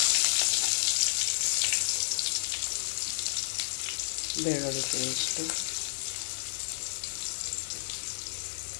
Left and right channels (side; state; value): right; silent; digital silence